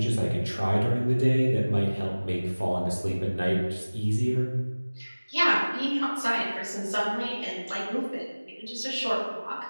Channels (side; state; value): both; inverted; correlation -1.00